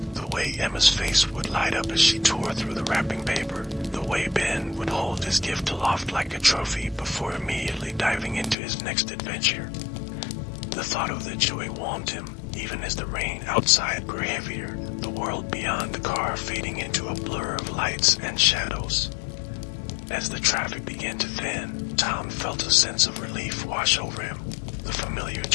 the way Emma's face would light up as she tore through the wrapping paper, the way Ben would hold his gift aloft like a trophy before immediately diving into his next adventure. The thought of the joy warmed him, even as the rain outside grew heavier, the world beyond the car fading into a blur of lights and shadows. As the traffic began to thin, Tom felt a sense of relief wash over him. The familiar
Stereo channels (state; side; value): drops out; right; at 8.6 s